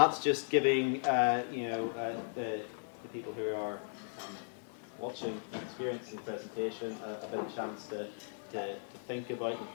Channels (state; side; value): silent; right; digital silence